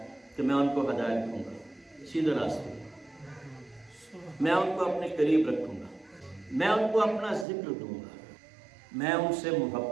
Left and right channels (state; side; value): drops out; left; at 7.5 s